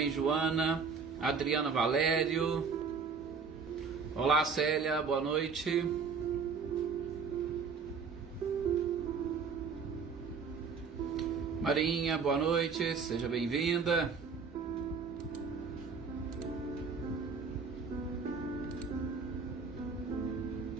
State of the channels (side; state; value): left; quieter; 5.4 dB